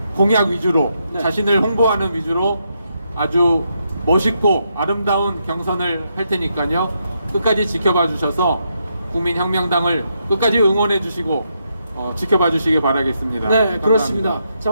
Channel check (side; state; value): both; inverted; correlation -0.80